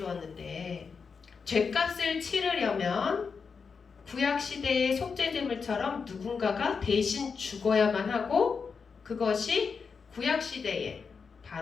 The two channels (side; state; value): right; quieter; 5.5 dB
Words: 죄값을 치르려면 구약시대의 속죄제물처럼 누군가가 대신 죽어야만 하고, 그것이 구약시대에